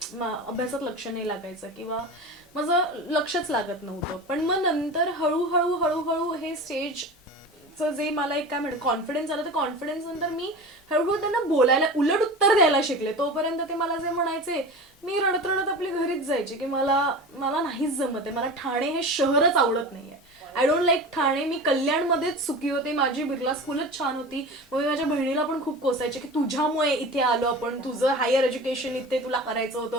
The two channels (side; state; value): both; normal; correlation 0.32